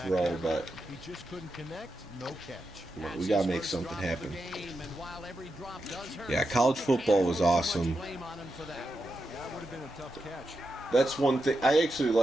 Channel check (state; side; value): normal; both; correlation 0.87